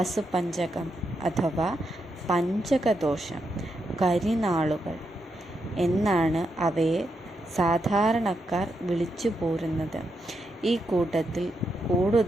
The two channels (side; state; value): both; normal; correlation 0.83